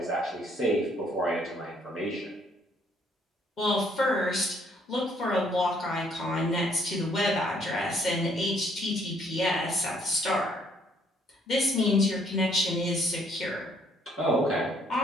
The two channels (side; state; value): both; normal; correlation 0.66